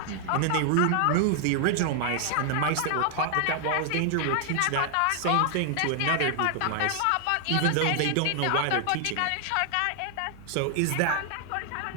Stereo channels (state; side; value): different; both; correlation 0.00